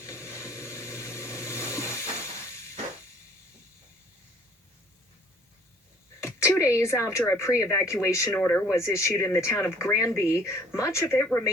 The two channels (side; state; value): both; normal; correlation 0.55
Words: 2 days after a pre-evacuation order was issued in the town of Granby, much of it